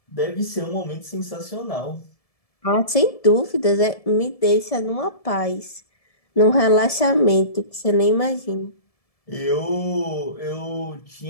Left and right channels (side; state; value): right; late; 1.7 ms